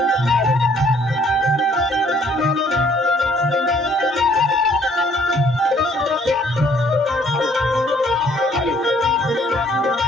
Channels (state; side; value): normal; both; correlation 0.62